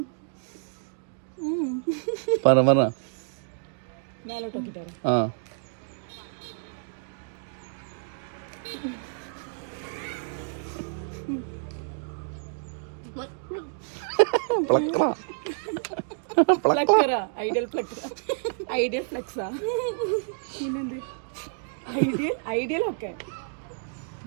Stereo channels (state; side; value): silent; left; digital silence